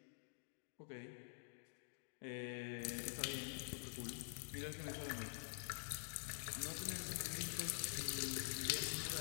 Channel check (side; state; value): right; silent; digital silence